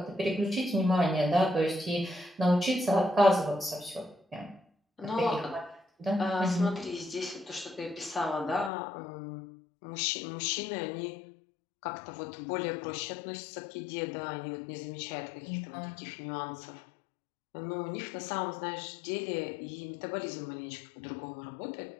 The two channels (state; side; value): drops out; right; at 8.7 s